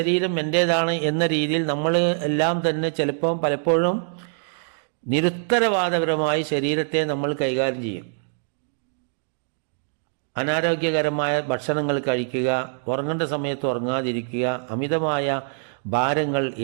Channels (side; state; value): left; silent; digital silence